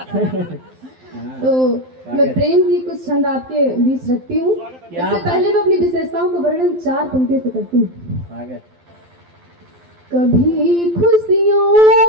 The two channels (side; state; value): left; late; 12 ms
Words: तो मैं प्रेम की कुछ छंद आपके बीच रखती हूँ। इससे पहले मैं अपनी विशेषताओं का वर्णन 4 पंक्तियों से करती हूँ। कभी